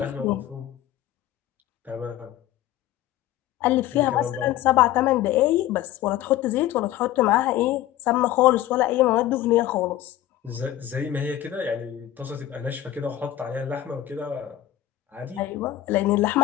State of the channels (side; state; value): right; quieter; 13.2 dB